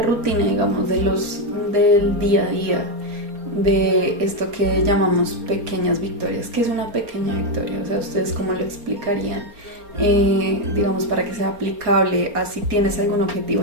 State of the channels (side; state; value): left; late; 4.3 ms